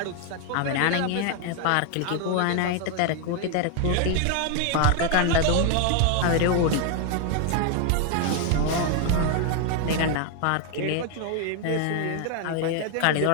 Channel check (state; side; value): different; both; correlation 0.01